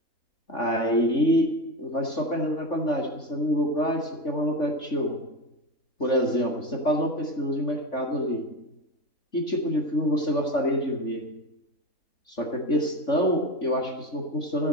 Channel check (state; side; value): late; right; 3.5 ms